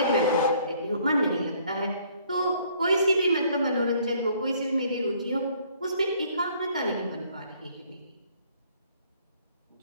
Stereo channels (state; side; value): inverted; both; correlation -0.62